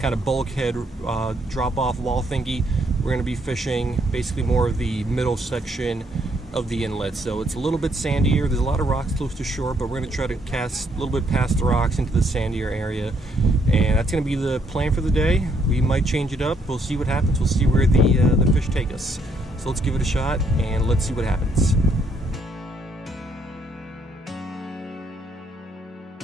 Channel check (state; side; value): normal; both; correlation 0.71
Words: of bulkhead drop-off wall thingy, we're going to be fishing basically more of the middle section of the inlet. So it's a little bit sandier. There's a lot of rocks close to shore, but we're going to try to cast a little bit past the rocks into the sandier area. And that's going to be the plan for the day. We might change it up. We'll see what happens. We'll see where the fish take us. So let's give it a shot and let's see what happens.